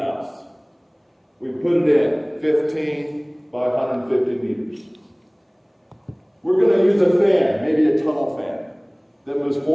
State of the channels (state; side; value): identical; both; correlation 1.00